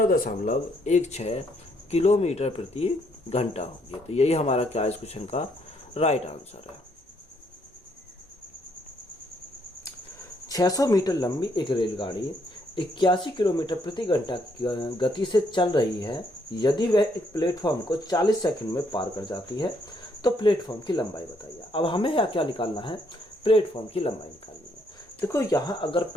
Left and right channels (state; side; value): normal; both; correlation 0.71